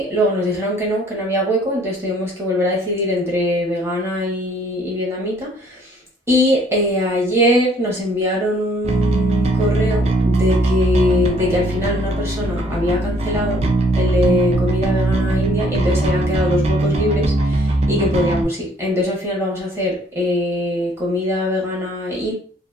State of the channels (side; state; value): both; normal; correlation 0.62